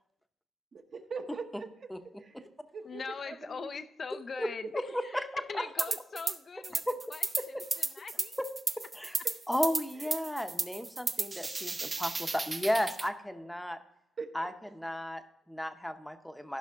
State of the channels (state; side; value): normal; both; correlation 0.95